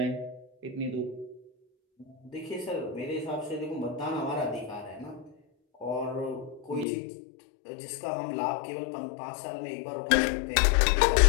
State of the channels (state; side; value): drops out; right; at 6.9 s